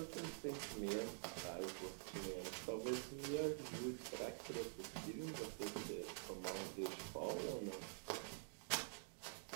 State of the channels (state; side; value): silent; left; digital silence